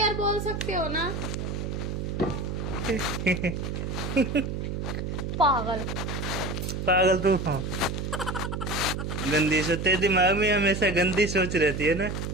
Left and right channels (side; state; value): right; noise; hum, 3 dB below the sound